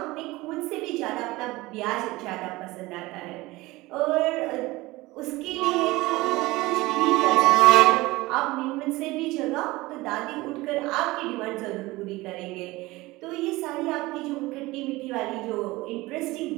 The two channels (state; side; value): quieter; left; 20.2 dB